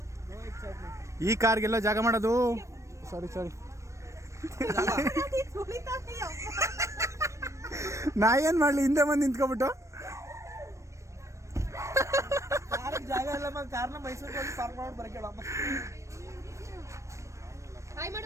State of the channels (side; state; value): left; late; 0.15 ms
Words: ಈ ಕಾರ್ಗೆಲ್ಲ ಜಾಗ ಮಾಡೋದು ಸಾರಿ ನಾ ಏನ್ ಮಾಡ್ಲಿ, ಹಿಂದೆ ಬಂದು ನಿಂತ್ಕೊಬಿಟ್ಟು. ಜಾಗ ಇಲ್ಲ, ಕಾರ್ನ ಮೈಸೂರಿಗೆ ಹೋಗಿ ಪಾರ್ಕ್ ಮಾಡಿ ಬರಕೇಳಮ್ಮ.